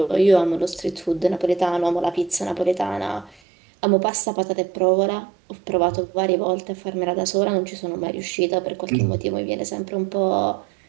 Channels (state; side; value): drops out; left; at 3.4 s